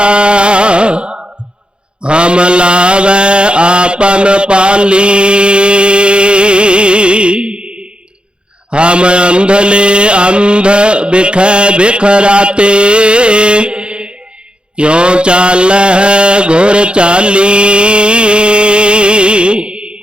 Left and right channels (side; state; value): left; late; 0.054 ms